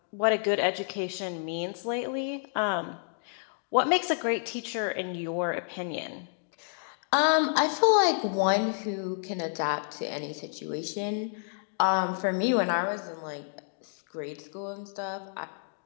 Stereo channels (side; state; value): right; silent; digital silence